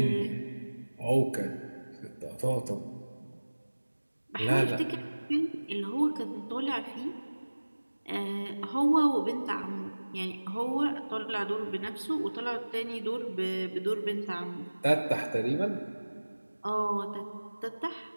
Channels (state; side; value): inverted; both; correlation -1.00